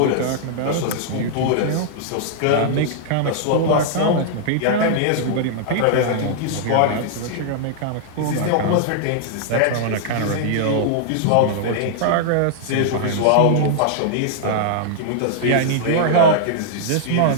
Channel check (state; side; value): different; both; correlation -0.01